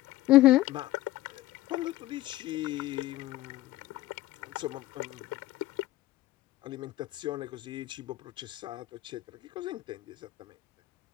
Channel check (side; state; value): right; quieter; 16.4 dB